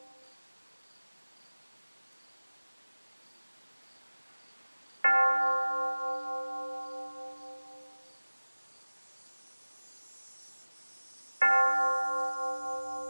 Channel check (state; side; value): inverted; both; correlation -1.00